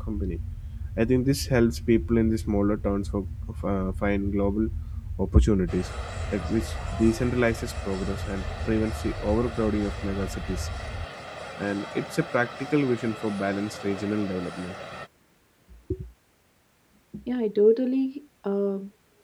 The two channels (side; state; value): both; identical; correlation 1.00